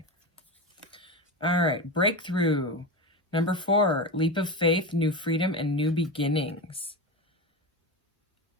All right. Breakthrough. Number 4. Leap of faith, new freedom, and new beginnings.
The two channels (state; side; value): normal; both; correlation 0.20